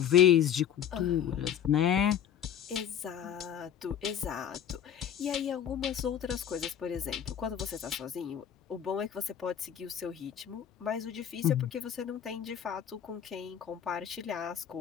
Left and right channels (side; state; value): right; quieter; 9.4 dB